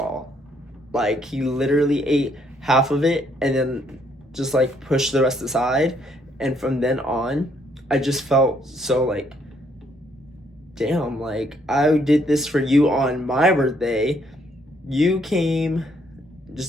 Like, he literally ate half of it and then just like pushed the rest aside. And from then on, I just felt so like, damn, like I did this for you on my birthday. You came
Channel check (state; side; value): normal; both; correlation 0.69